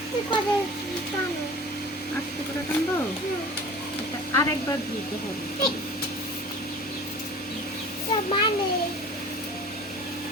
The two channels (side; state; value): left; noise; hum, 29 dB below the sound